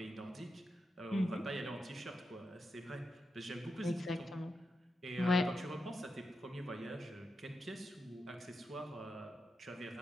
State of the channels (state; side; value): normal; both; correlation 0.87